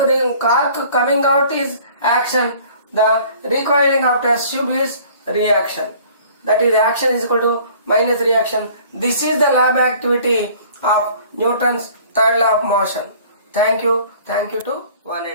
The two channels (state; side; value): inverted; both; correlation -0.51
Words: coming out is action. The recoiling of test tube is reaction. That is, action is equal to minus reaction. This is the lab activity of Newton's third law of motion. Thank you. Thank you to one